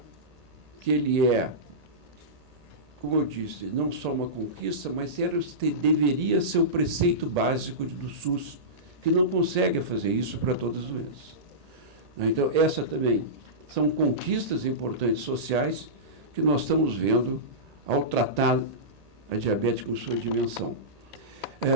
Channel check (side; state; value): left; late; 1.8 ms